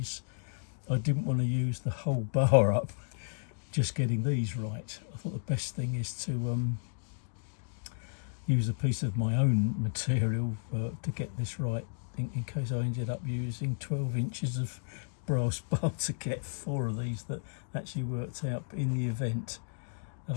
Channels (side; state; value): right; silent; digital silence